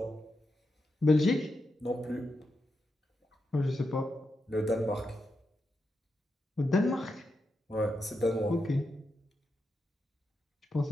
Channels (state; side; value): normal; both; correlation 0.86